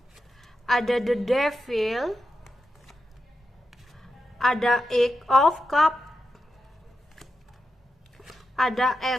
ada The Devil, ada Eight of Cup, ada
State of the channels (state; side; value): normal; both; correlation 0.88